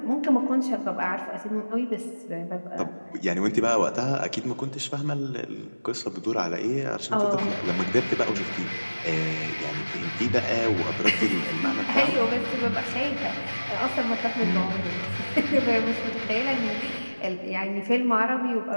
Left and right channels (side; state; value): both; inverted; correlation -1.00